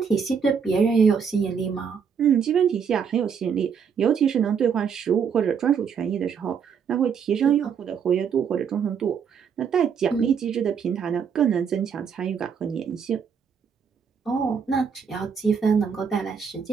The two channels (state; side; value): quieter; left; 6.8 dB